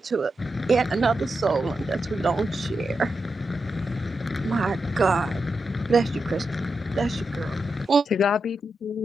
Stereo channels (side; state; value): both; normal; correlation 0.87